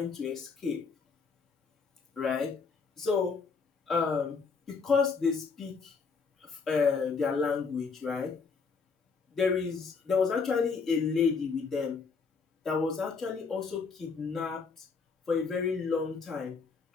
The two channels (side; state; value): right; quieter; 5.1 dB